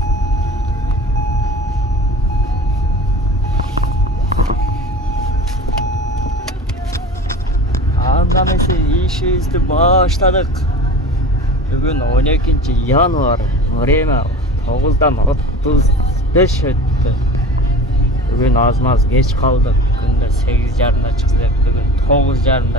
Andamesi işimizni başladık. Bugün 12 yanvar. Время 9'dan 35 öttü. Bugün az geç kaldık. Günde 8:30'da çıkacak. Bugün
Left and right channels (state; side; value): normal; both; correlation 0.37